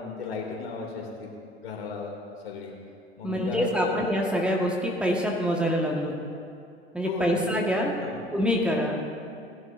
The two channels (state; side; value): normal; both; correlation 0.57